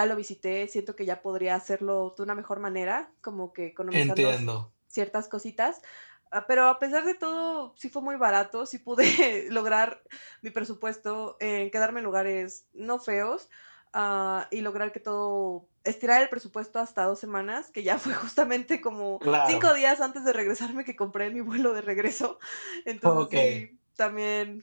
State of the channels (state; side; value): inverted; both; correlation -1.00